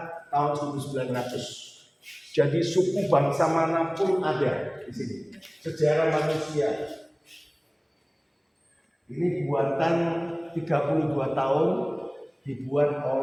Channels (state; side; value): identical; both; correlation 1.00